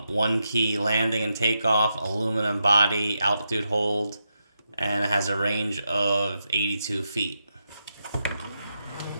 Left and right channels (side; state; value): both; inverted; correlation -0.85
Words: key landing and takeoff, aluminum body, altitude hold, and it has a range of 82 feet.